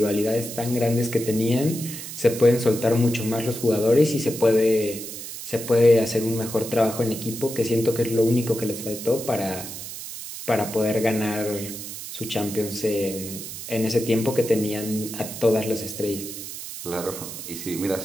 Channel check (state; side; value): noise; right; hiss, 9 dB below the sound